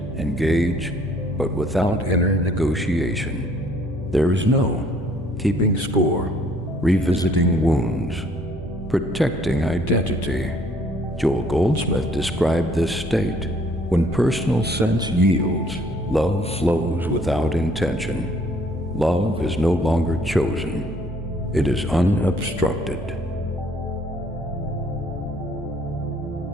engage, but without inner negotiation. There is no keeping score, revisiting wounds, protecting identity. Joel Goldsmith described this state. When personal sense yields, love flows without intention. Love is no longer chosen. It is unobstructed.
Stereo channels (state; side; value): normal; both; correlation 0.61